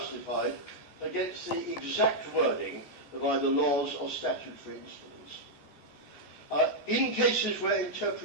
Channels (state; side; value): late; right; 15 ms